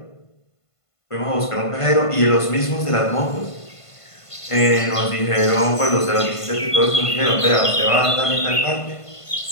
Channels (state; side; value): late; right; 1.5 ms